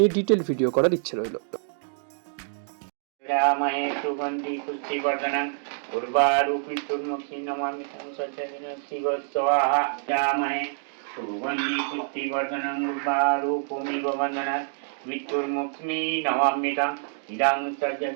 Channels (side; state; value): left; silent; digital silence